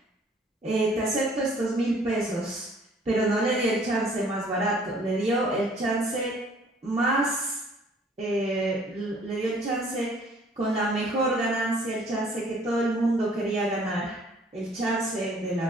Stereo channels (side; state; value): both; normal; correlation 0.57